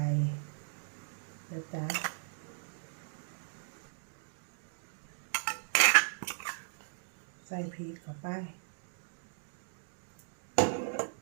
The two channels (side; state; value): left; silent; digital silence